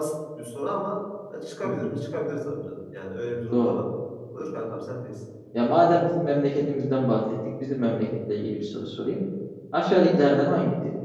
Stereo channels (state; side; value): identical; both; correlation 1.00